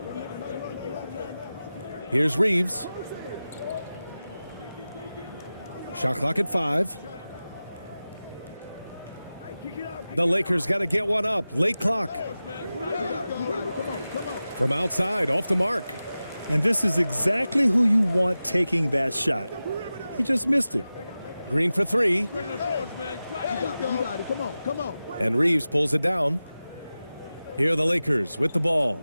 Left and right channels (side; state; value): both; inverted; correlation -0.95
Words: Here's Reeves. Shot clock at 5. The Lakers got to get one up. Late clock. From outside, off the mark. And this is exactly who you want taking that shot. He just missed it. Green for three. You got it. Come on, come on. And Reeves pulls it down. Here are the Lakers with the